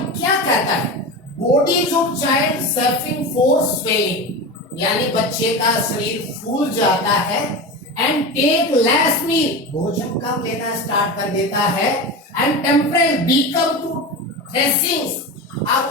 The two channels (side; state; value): both; normal; correlation 0.25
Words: क्या कहता है? Bodies of child suffering for swelling यानी बच्चे का शरीर फूल जाता है, एंड टेक लेस मील भोजन कम लेना स्टार्ट कर देता है, एंड टेम्परेचर बिकम टू थ्रेसिंग्स अब